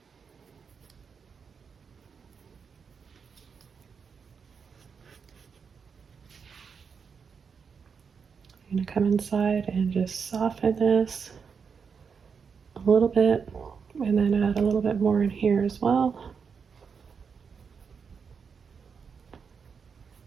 I'm going to come inside and just soften this a little bit, and then add a little bit more in here as well.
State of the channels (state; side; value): quieter; left; 6.0 dB